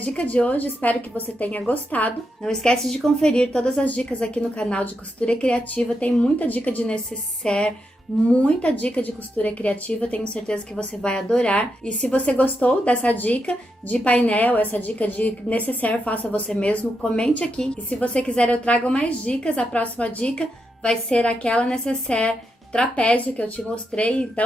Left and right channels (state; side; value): normal; both; correlation 0.84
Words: de hoje, espero que você tenha gostado. Não esquece de conferir todas as dicas aqui no canal de Costura Criativa, tem muita dica de necessaire, muita dica de costura criativa, tenho certeza que você vai adorar. E se você gostou dessa dica de painel, essa dica de necessaire, faça você mesmo, comente aqui. E se você quiser eu trago mais dicas, a próxima dica vai ser aquela necessaire trapézio que eu te mostrei.